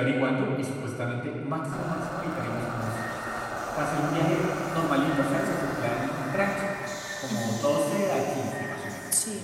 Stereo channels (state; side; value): identical; both; correlation 1.00